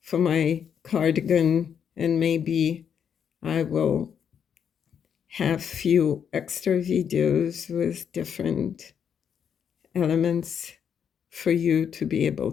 for my cardigan, and maybe I will have few extra videos with different elements for you to be able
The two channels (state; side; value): quieter; right; 7.9 dB